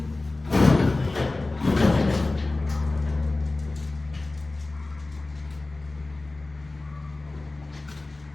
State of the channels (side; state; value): right; quieter; 3.1 dB